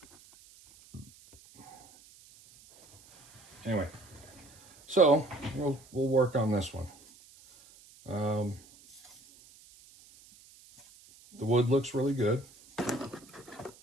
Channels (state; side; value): noise; right; hiss, 24 dB below the sound